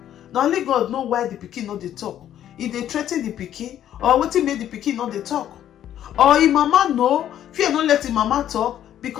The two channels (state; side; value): quieter; right; 11.1 dB